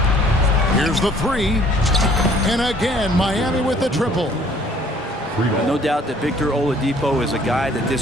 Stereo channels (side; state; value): both; normal; correlation 0.57